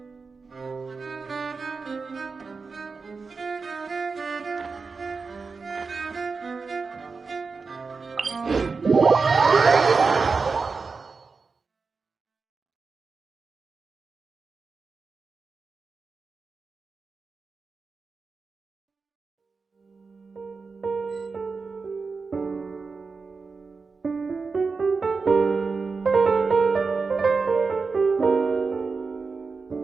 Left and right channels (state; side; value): quieter; left; 4.6 dB